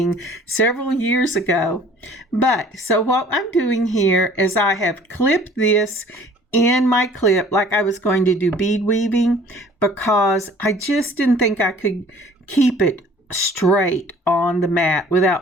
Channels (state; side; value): normal; both; correlation 0.52